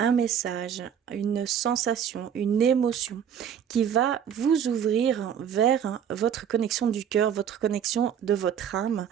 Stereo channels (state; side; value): quieter; left; 8.6 dB